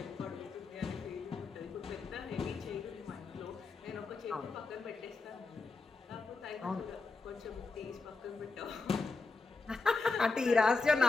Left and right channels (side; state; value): right; quieter; 3.9 dB